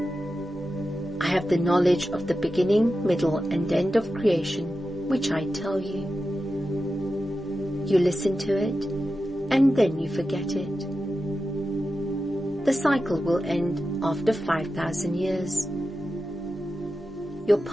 I have the knowledge of the beginning, middle, and end of creation, which I tell you. You listen to it, and then you forget it. The cycle will end after 5,000 years. Your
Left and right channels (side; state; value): both; normal; correlation 0.91